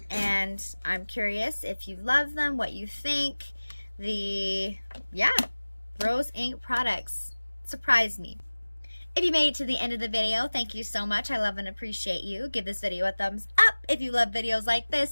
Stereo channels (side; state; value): both; inverted; correlation -1.00